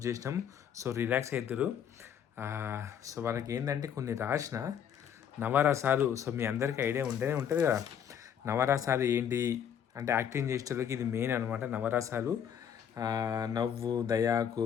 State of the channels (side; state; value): right; quieter; 8.6 dB